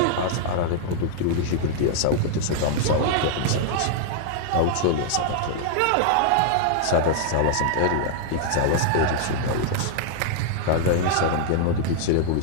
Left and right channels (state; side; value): different; both; correlation -0.01